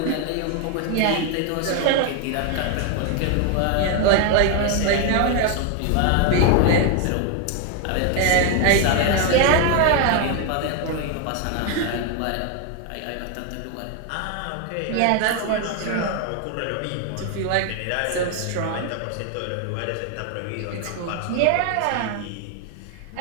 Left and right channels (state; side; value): different; both; correlation 0.01